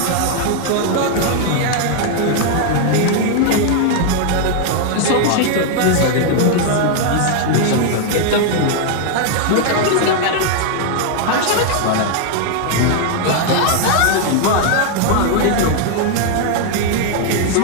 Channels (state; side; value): different; both; correlation 0.00